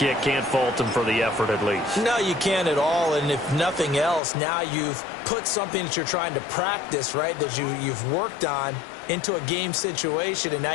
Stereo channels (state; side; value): drops out; right; at 4.2 s